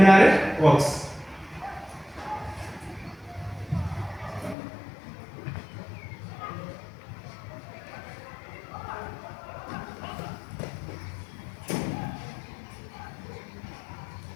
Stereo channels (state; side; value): drops out; right; at 4.5 s